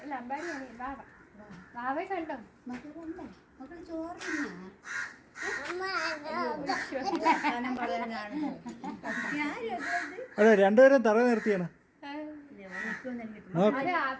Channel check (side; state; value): both; identical; correlation 1.00